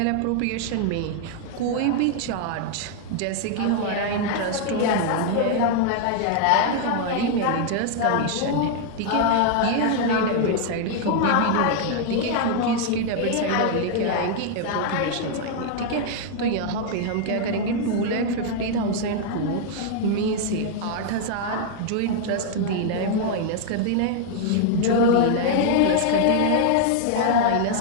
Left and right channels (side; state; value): both; different; correlation 0.00